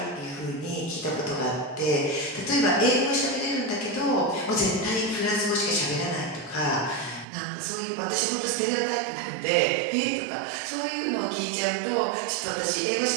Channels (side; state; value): left; drops out; at 7.2 s